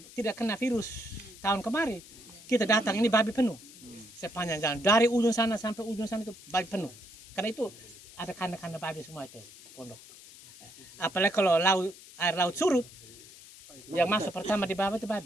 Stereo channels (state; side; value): noise; left; hiss, 19 dB below the sound